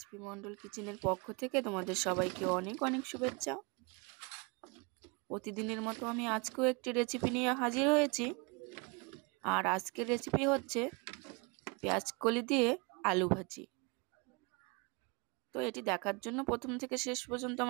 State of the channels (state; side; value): quieter; left; 30.4 dB